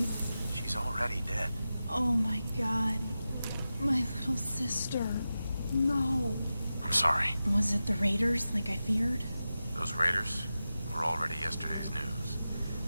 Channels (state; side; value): inverted; both; correlation -0.93